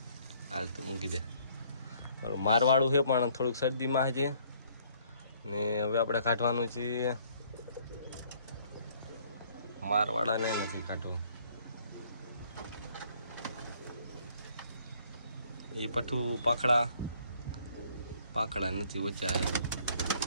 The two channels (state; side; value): inverted; both; correlation -0.62